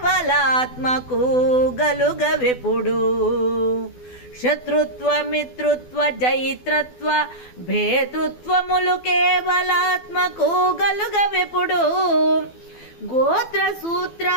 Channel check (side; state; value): right; late; 12 ms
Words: గలుగవెప్పుడు. శత్రుత్వ మిత్రుత్వ జైత్రత్వ భేతృత్వములు కేవలాత్మకు గలుగవెప్పుడు. గోత్ర సూత్ర